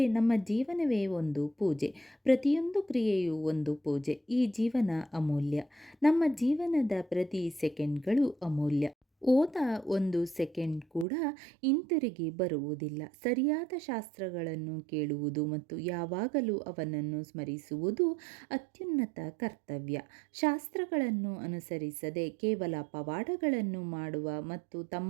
ನಮ್ಮ ಜೀವನವೇ ಒಂದು ಪೂಜೆ. ಪ್ರತಿಯೊಂದು ಕ್ರಿಯೆಯೂ ಒಂದು ಪೂಜೆ. ಈ ಜೀವನ ಅಮೂಲ್ಯ. ನಮ್ಮ ಜೀವನದ ಪ್ರತಿ ಸೆಕೆಂಡ್ಗಳು ಅಮೂಲ್ಯ. ಹೋದ ಒಂದು ಸೆಕೆಂಡ್ ಕೂಡ ಹಿಂತಿರುಗಿ ಬರುವುದಿಲ್ಲ. ಸರಿಯಾದ ಶಾಸ್ತ್ರಗಳನ್ನು ಕೇಳುವುದು ಮತ್ತು ಯಾವಾಗಲೂ ಅವನನ್ನು ಸ್ಮರಿಸುವುದು ಅತ್ಯುನ್ನತ ಕರ್ತವ್ಯ. ಶಾಸ್ತ್ರಗಳನ್ನು ಅನುಸರಿಸದೆ ಕೇವಲ ಪವಾಡಗಳನ್ನು ಮಾಡುವ ಮತ್ತು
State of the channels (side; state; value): left; drops out; at 11.1 s